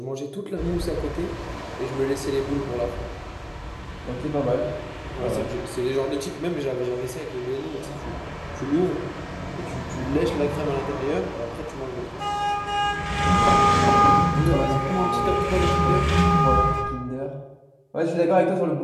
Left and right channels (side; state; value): both; identical; correlation 1.00